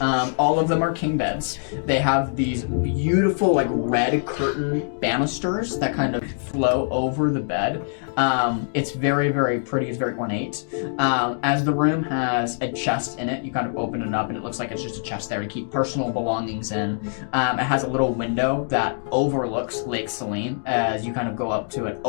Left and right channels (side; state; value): right; silent; digital silence